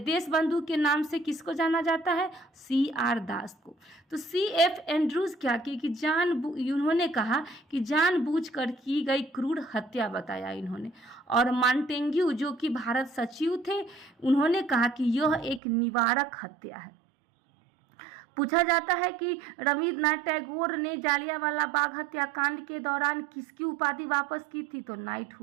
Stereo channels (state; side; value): drops out; left; at 15.6 s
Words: देशबंधु के नाम से किसको जाना जाता है, C.R. दास को। तो C.F. एंड्रूज क्या किए कि इन्होंने कहा कि जानबूझकर की गई क्रूर हत्या बताया इन्होंने। और मॉन्टेग्यू जो कि भारत सचिव थे, उन्होंने कहा कि यह एक निवारक हत्या है। पूछा जाता है कि रविन्द्रनाथ टैगोर ने जालियांवाला बाग हत्याकांड के दौरान किसकी उपाधि वापस की थी, तो